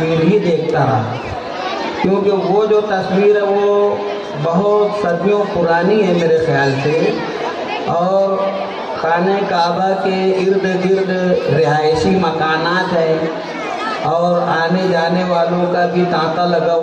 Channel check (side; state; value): both; identical; correlation 1.00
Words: ہی دیکھتا رہا، کیونکہ وہ جو تصویر ہے وہ بہت صدیوں پرانی ہے میرے خیال سے، اور خانہ کعبہ کے ارد گرد رہائشی مکانات ہیں اور آنے جانے والوں کا بھی تانتا لگا